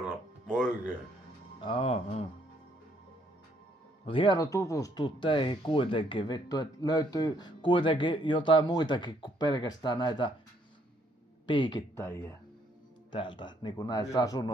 oikein. Mut hieno tutustua teihin kuitenkin, vittu, että löytyy kuitenkin jotain muitakin kuin pelkästään näitä piikittäjiä täältä, niinku näistä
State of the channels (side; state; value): both; normal; correlation 0.68